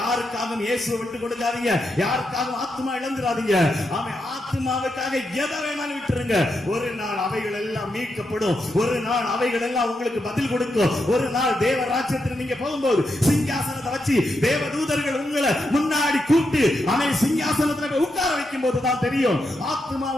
இயேசுவை விட்டு கொடுக்காதீங்க, யாருக்காகவும் ஆத்மா இழந்துடாதீங்க. ஆமே, ஆத்மாவுக்காக எதை வேணாலும் விட்டுருங்க. ஒரு நாள் அவைகள் எல்லாம் மீட்கப்படும், ஒரு நாள் அவைகள் எல்லாம் உங்களுக்கு பதில் கொடுக்கும். ஒரு நாள் தேவ ராஜ்யத்தில் நீங்க போகும்போது சிங்காசனத்தை வச்சு தேவ தூதர்கள் உங்களை முன்னாடி கூப்பிட்டு அவன் சிங்காசனத்துல உட்கார வைக்கும் போதுதான் தெரியும்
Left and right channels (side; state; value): both; normal; correlation 0.84